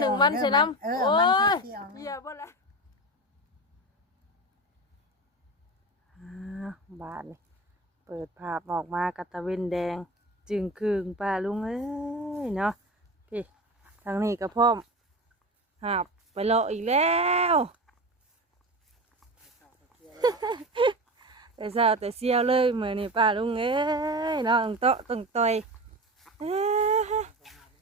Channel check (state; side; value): normal; both; correlation 0.26